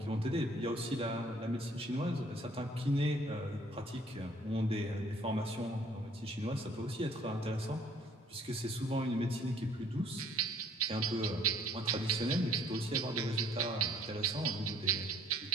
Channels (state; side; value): normal; both; correlation 0.59